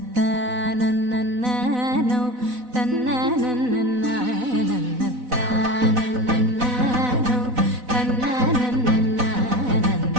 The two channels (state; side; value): late; left; 4.0 ms